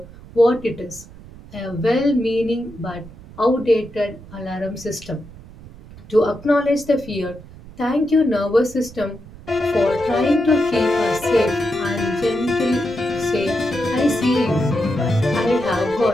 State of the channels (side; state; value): right; noise; rumble, 18 dB below the sound